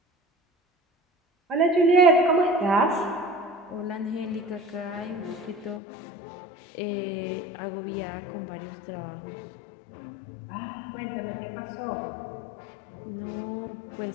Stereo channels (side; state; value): right; drops out; at 5.8 s